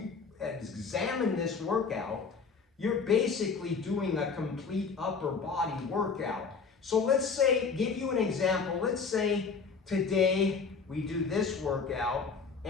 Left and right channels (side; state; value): right; quieter; 5.2 dB